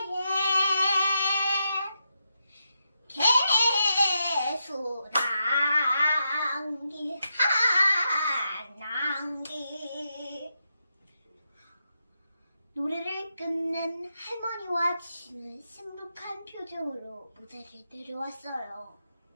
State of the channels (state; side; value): inverted; both; correlation -0.85